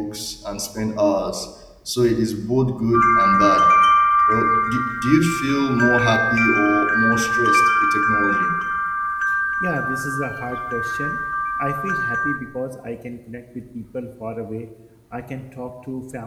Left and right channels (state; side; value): identical; both; correlation 1.00